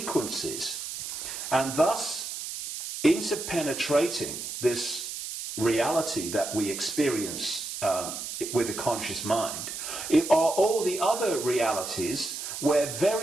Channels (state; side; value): noise; right; hiss, 7 dB below the sound